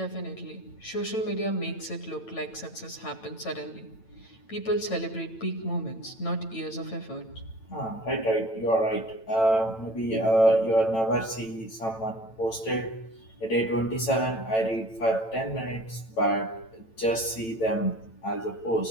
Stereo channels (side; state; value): right; late; 9.0 ms